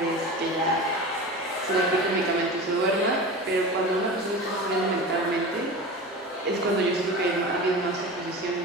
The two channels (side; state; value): both; normal; correlation 0.31